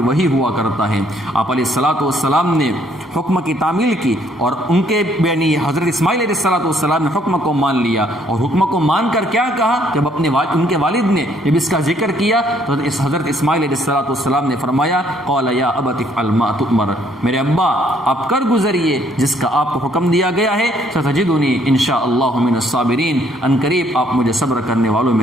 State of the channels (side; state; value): both; normal; correlation 0.66